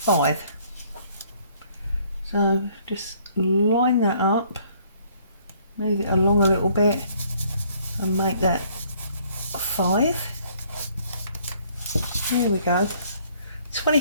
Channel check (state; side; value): inverted; both; correlation -0.62